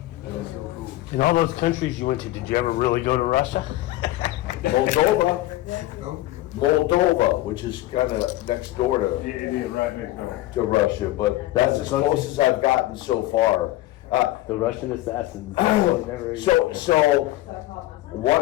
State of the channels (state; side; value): quieter; right; 16.5 dB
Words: That's so cool. In all those countries you went to, did you ever really go to Russia? Moldova, which is kind of next door Yeah, it is right next door. to Russia, but that's as close as I've gotten so far. The Russian assassins. So